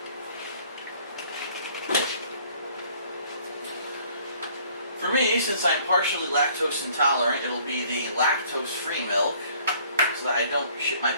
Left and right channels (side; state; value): both; inverted; correlation -0.57